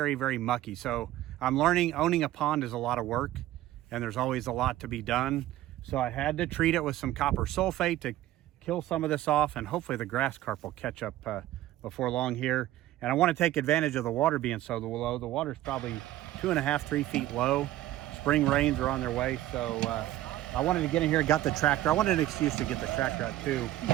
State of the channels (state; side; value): quieter; left; 14.5 dB